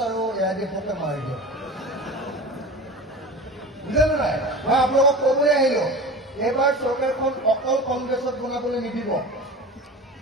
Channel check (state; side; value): normal; both; correlation 0.33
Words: আৰু AIDFকে মাৰি দিয়ক। বুজিলে নাই? মই আপোনালোকক ক'বলৈ আহিলো, এইবাৰ চৰকাৰখন অকল কংগ্ৰেছত বনাবলৈ নিদিব।